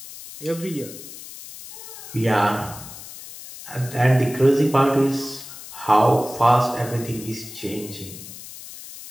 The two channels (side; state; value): left; noise; hiss, 14 dB below the sound